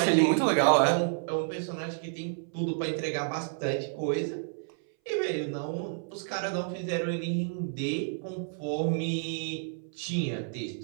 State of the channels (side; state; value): left; silent; 58 dB below the other